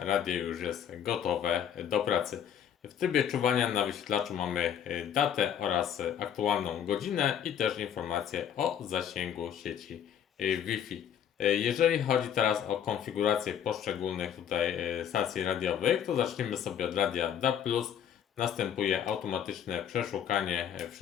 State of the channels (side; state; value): right; quieter; 9.0 dB